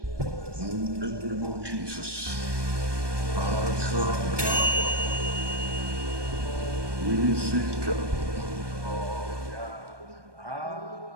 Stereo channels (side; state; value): left; late; 1.2 ms